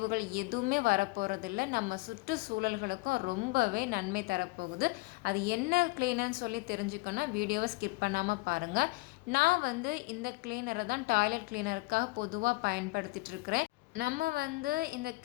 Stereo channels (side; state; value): right; quieter; 23.4 dB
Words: எதுவுமே வரப்போகிறதில்ல. நம்ம சுற்றுச்சூழல்களுக்கும் ரொம்பவே நன்மை தரப்போகுது. அது என்ன க்ளீனர்னு சொல்லி தெரிஞ்சுக்கணும், வீடியோவை ஸ்கிப் பண்ணாமல் பாருங்கள். நான் இந்த க்ளீனரை தான் டாய்லெட் க்ளீனருக்காக பொதுவாக பயன்படுத்திட்டு இருக்கிறேன். நம்ம இந்த